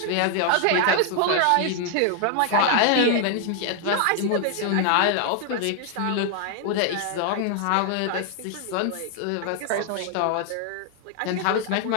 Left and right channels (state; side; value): different; both; correlation 0.00